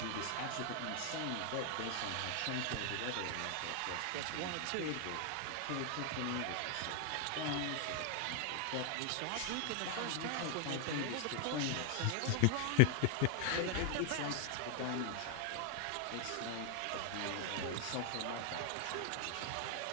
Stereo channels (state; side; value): different; both; correlation 0.00